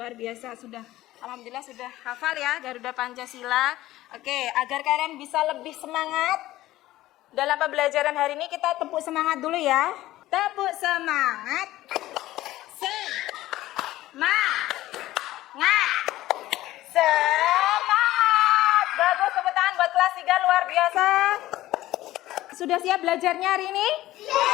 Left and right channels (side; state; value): right; quieter; 15.8 dB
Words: sudah. Alhamdulillah sudah hafal ya Garuda Pancasila. Oke, agar kalian bisa lebih semangat dalam pembelajaran hari ini, kita tepuk semangat dulu ya. Tepuk semangat. Semangat. Bagus, tepuk tangan buat kelas 3, luar biasa. Sudah siap belajarnya hari ini?